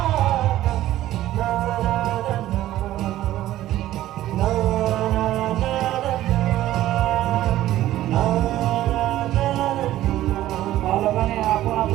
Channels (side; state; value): left; quieter; 14.1 dB